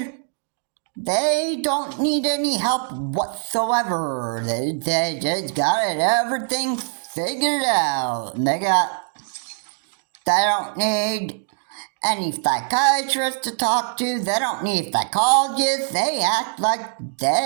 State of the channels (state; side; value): silent; left; 64 dB below the other